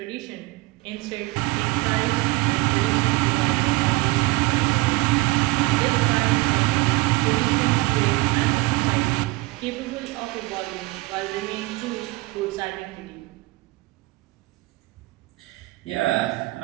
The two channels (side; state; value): left; quieter; 21.8 dB